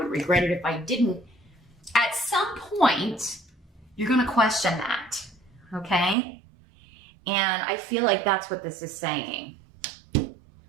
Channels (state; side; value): drops out; left; at 6.2 s